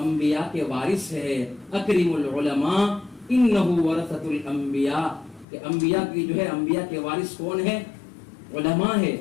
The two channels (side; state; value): right; drops out; at 5.5 s